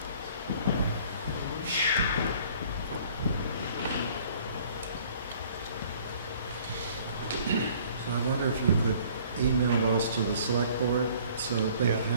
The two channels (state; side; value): inverted; both; correlation -0.55